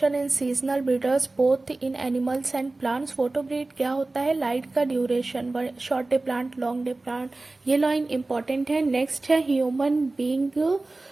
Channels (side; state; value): left; quieter; 3.1 dB